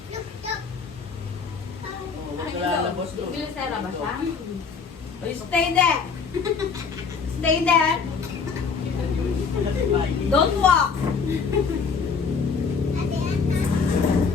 Oh, huwag ka lalabas doon. Bilisera ba siya? Stay there. Stay there. Don't walk.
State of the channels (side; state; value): right; quieter; 5.4 dB